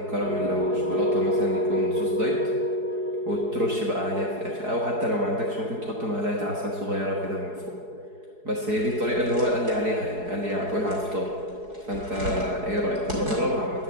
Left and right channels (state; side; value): late; left; 4.7 ms